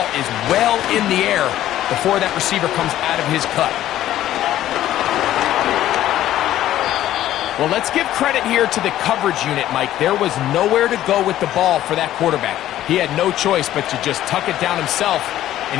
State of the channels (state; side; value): quieter; right; 13.1 dB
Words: is well in the air before that receiver comes out of his cut. Well, let's give credit here to the coverage unit, Mike. There was nowhere to go with the ball for that quarterback. He had no choice but to just tuck it down himself,